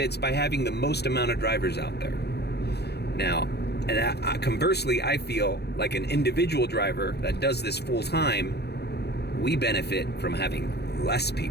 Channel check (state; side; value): late; right; 0.48 ms